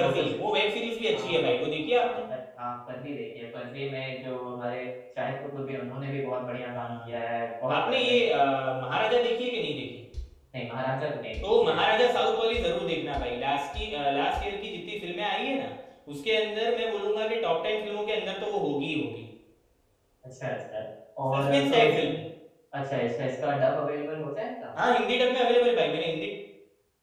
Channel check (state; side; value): identical; both; correlation 1.00